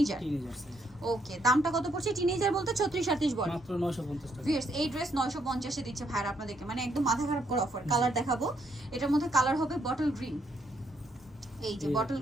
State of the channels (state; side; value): normal; both; correlation 0.73